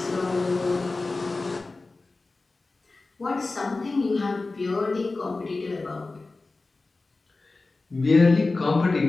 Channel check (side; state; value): right; quieter; 3.5 dB